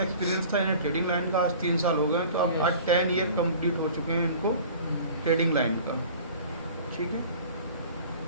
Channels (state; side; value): inverted; both; correlation -0.44